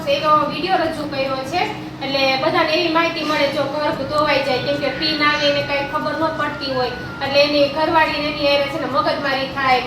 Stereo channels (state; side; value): identical; both; correlation 1.00